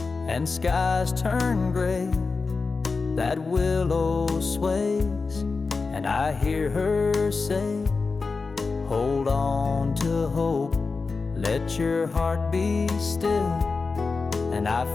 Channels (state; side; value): quieter; right; 4.3 dB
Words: and skies turn gray, that willow sways and I hear her say, hold on to hope, let your heart be still. And I